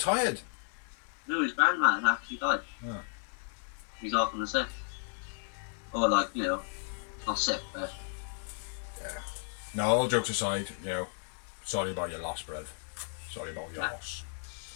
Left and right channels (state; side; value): silent; right; digital silence